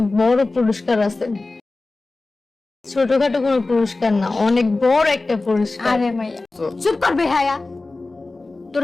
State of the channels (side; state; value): right; quieter; 3.3 dB